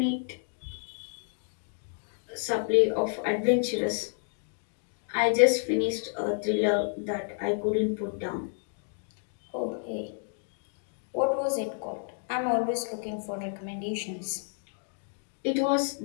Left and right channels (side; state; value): right; silent; 58 dB below the other